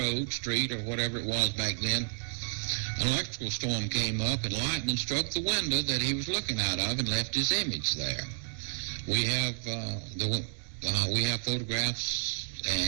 street, or whatever it was back then, an electrical storm came up and lightning struck the window that he was looking out of and left his image there. We have photographs,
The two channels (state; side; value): silent; left; digital silence